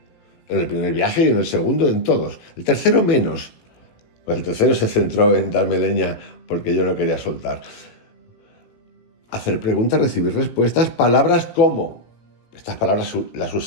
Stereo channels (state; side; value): late; right; 18 ms